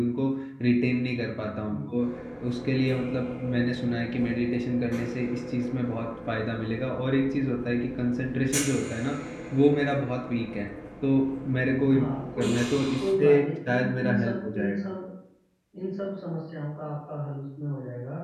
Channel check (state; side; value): identical; both; correlation 1.00